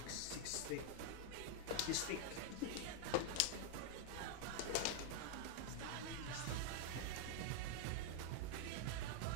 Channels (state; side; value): different; both; correlation 0.00